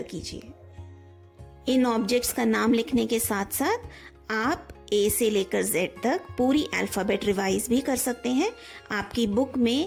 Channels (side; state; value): both; identical; correlation 1.00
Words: कीजिए। इन ऑब्जेक्ट्स का नाम लिखने के साथ साथ आप ए से लेकर जेड तक पूरी अल्फ़ाबेट रिवाइज भी कर सकते हैं। आपकी बुक